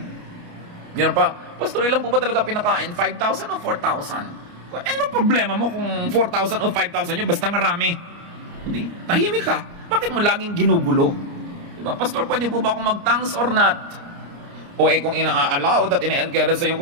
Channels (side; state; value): left; late; 29 ms